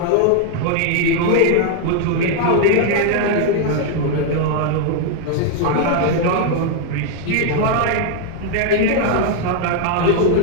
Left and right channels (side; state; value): both; different; correlation 0.00